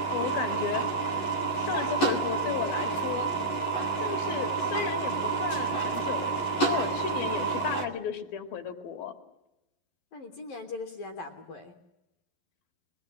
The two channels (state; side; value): late; right; 11 ms